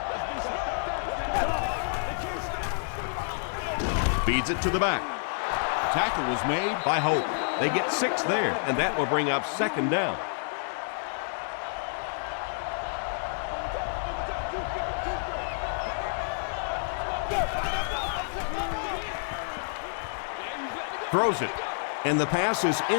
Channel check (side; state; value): right; silent; digital silence